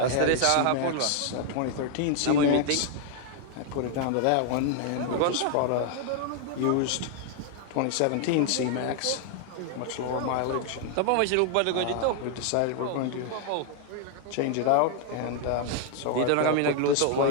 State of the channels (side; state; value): both; different; correlation 0.00